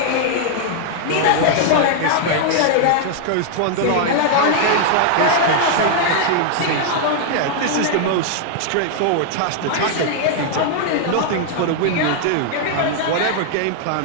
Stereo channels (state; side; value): different; both; correlation 0.00